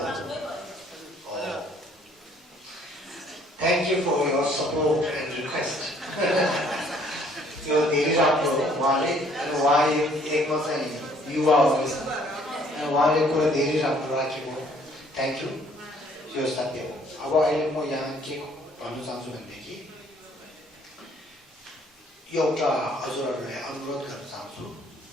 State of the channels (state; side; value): normal; both; correlation 0.61